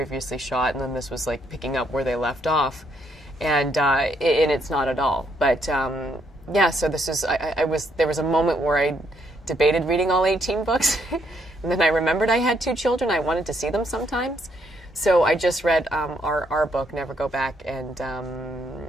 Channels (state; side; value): normal; both; correlation 0.72